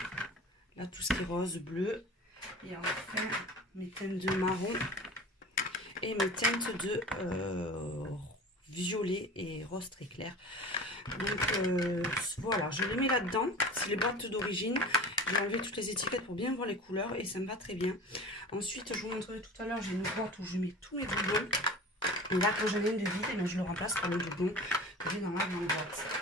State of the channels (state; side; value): normal; both; correlation 0.37